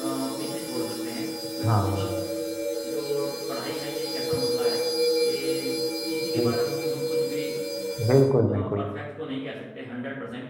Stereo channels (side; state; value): both; identical; correlation 1.00